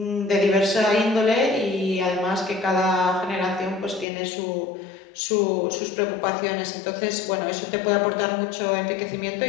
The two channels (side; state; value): right; drops out; at 4.0 s